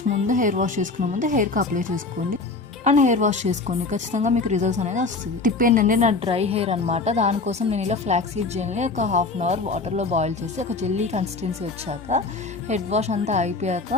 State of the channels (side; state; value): right; quieter; 3.8 dB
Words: ముందు హెయిర్ వాష్ చేసుకునే ముందు హెయిర్కి అప్లై చేసుకోండి అండ్ హెయిర్ వాష్ చేసుకోండి. ఖచ్చితంగా మీకు రిజల్ట్స్ అనేది వస్తుంది. టిప్ ఏంటంటే నా డ్రై హెయిర్ అనమాట, దానికోసం నేను ఇలా ఫ్లాక్స్ సీడ్ జెల్ని ఒక 1/2 hour వాటర్లో బాయిల్ చేసి ఒక జెల్లీ కన్సిస్టెన్సీ వచ్చాక హెడ్ వాష్ అంతా అయిపోయాక